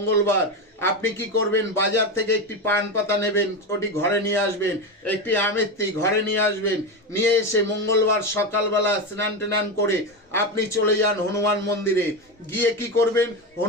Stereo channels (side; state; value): both; normal; correlation 0.16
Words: আপনি কি করবেন? বাজার থেকে একটি পান পাতা নেবেন, ওটি ঘরে নিয়ে আসবেন। একটি আমেত্তি ঘরে নিয়ে আসবেন। নিয়ে এসে মঙ্গলবার সকালবেলা স্নান টান করে আপনি চলে যান হনুমান মন্দিরে। গিয়ে কি করবেন?